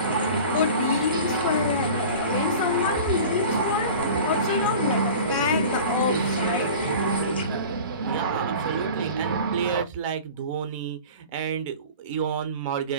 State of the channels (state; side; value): inverted; both; correlation -0.39